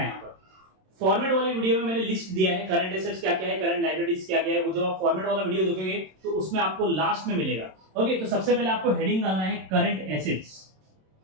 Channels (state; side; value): late; left; 27 ms